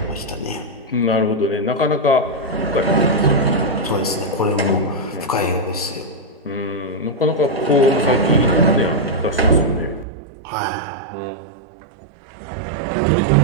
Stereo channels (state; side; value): drops out; left; at 10.1 s